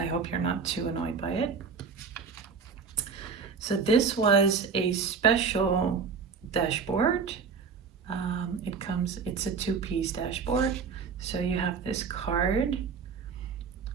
hope you're not too annoyed by it. So this was a special dashboard. It's a two-piece dashboard. So you have this card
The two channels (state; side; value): quieter; left; 5.6 dB